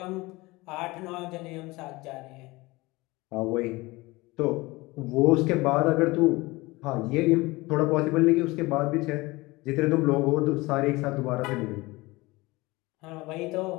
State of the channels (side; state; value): right; quieter; 22.0 dB